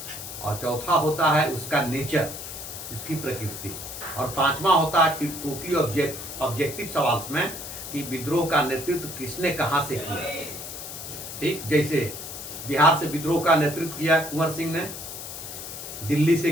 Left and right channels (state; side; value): noise; left; hiss, 9 dB below the sound